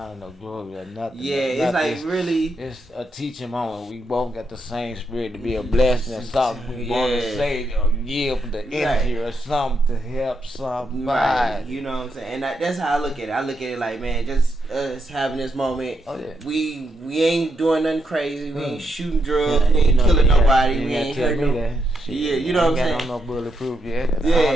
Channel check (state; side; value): normal; both; correlation 0.81